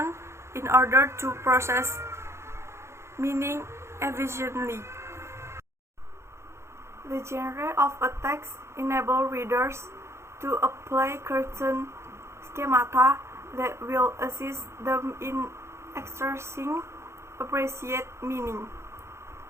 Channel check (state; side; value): late; left; 0.13 ms